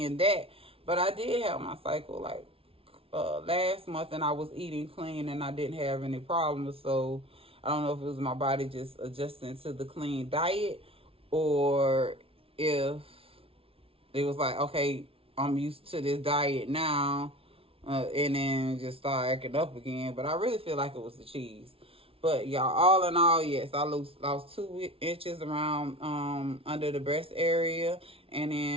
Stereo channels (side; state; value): left; late; 0.27 ms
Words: that. But I did have my cycle like last month, and I was eating clean and I didn't have any problems. So I don't know if it was my body just adjusting to the clean diet, or if it was like, okay, I'm used to this diet now, and then just start acting up again. But I really feel like it was the cheese. But y'all, all in all, yes, I lost 2 inches around under the breast area, and